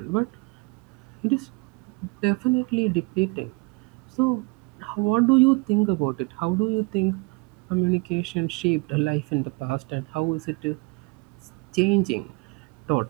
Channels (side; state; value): left; quieter; 27.7 dB